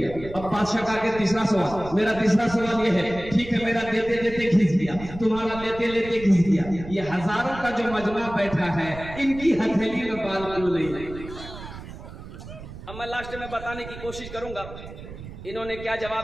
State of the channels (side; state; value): right; noise; rumble, 13 dB below the sound